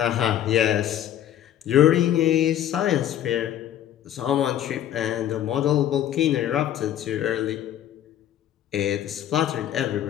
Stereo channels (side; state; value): right; quieter; 11.1 dB